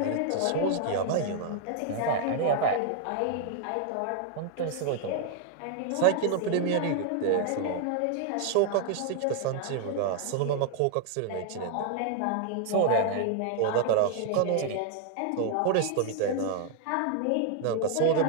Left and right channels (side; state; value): both; different; correlation 0.00